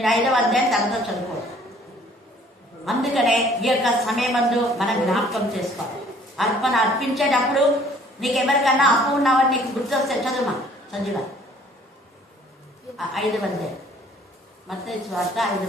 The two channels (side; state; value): both; normal; correlation 0.57